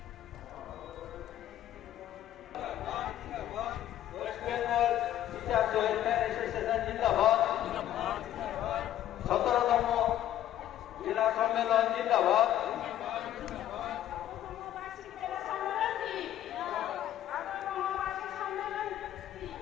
West Bengal teachers welfare association জিন্দাবাদ। 17তম জেলা সম্মেলন জিন্দাবাদ।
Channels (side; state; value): right; quieter; 12.2 dB